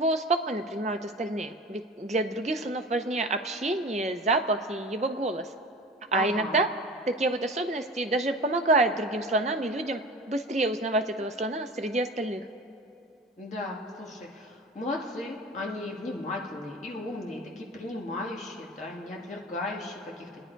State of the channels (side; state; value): both; normal; correlation 0.36